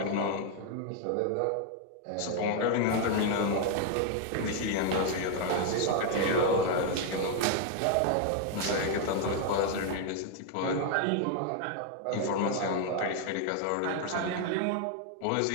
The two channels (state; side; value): different; both; correlation 0.00